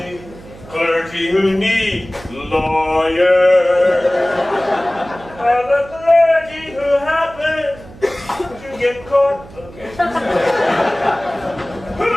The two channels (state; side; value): noise; right; hum, 19 dB below the sound